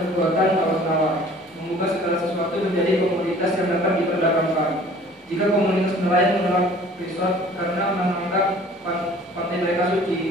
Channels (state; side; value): normal; both; correlation 0.50